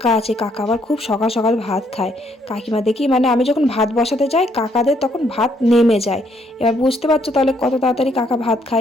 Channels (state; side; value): normal; both; correlation 0.70